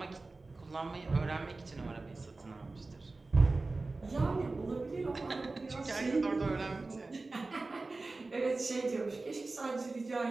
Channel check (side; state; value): left; quieter; 3.4 dB